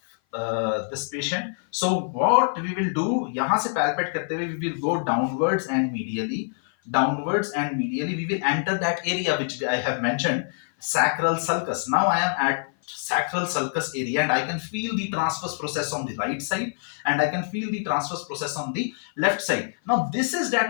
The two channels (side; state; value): right; silent; 57 dB below the other